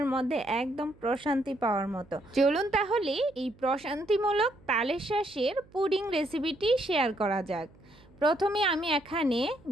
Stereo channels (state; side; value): noise; right; hum, 27 dB below the sound